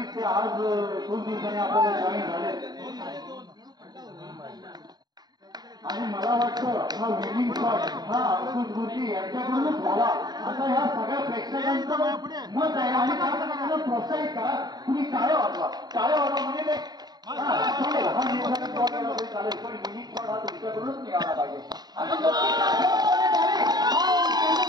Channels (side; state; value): left; late; 0.20 ms